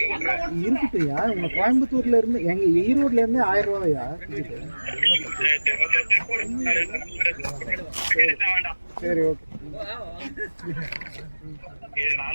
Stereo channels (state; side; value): inverted; both; correlation -1.00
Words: இருக்குயா உங்க கோயம்புத்தூர்ல இருந்து எங்க ஈரோட்ல இருந்து 1000 ரூபாயா? சரி ஓகே.